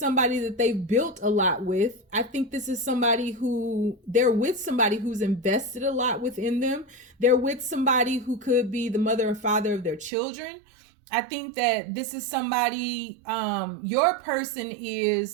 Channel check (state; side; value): drops out; left; at 10.1 s